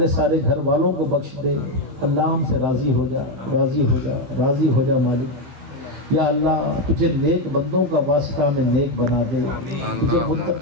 सारे घर वालों को बख्श दे। अल्लाह हमसे राज़ी हो जा, राज़ी हो जा, राज़ी हो जा मालिक। या अल्लाह तुझे नेक बंदों का वास्ता में नेक बना दे, तुझे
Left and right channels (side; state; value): left; late; 15 ms